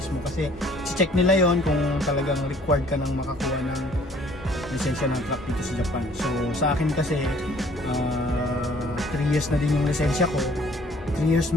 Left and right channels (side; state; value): both; normal; correlation 0.57